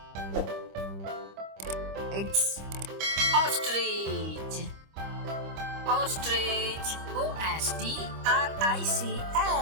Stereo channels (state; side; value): late; left; 25 ms